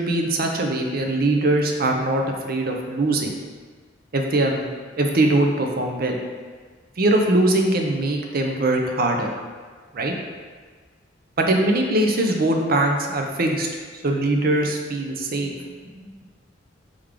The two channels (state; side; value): normal; both; correlation 0.45